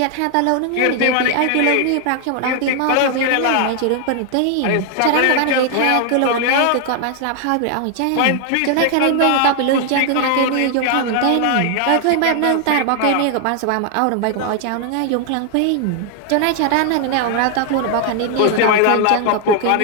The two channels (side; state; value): both; different; correlation 0.00